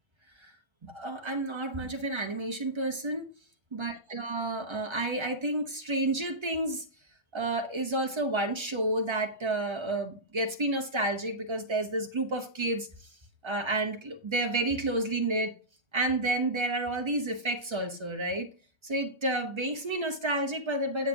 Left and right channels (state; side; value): late; left; 1.3 ms